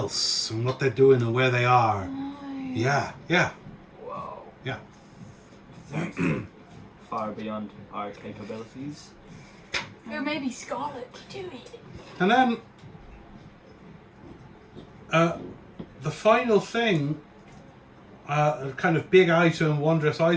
and what they're doing and where they are. Yeah. Whoa. Yeah. Far beyond our capabilities. Or maybe Scarlet could do it. And then the final thing, a kind of big item, wondrous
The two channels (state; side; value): identical; both; correlation 1.00